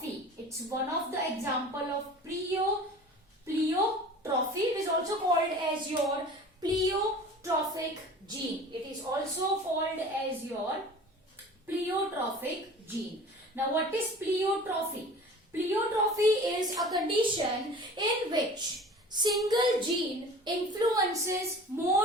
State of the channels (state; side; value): normal; both; correlation 0.41